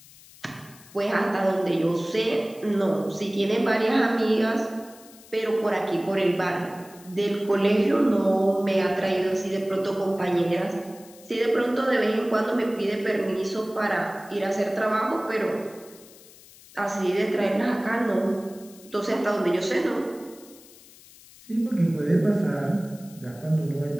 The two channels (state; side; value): noise; left; hiss, 22 dB below the sound